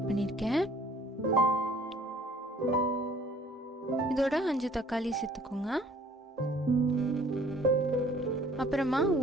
பண்ணியிருக்கேன். இதோட 5 தக்காளி சேர்த்துக்கோங்க. அப்புறமா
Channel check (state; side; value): normal; both; correlation 0.55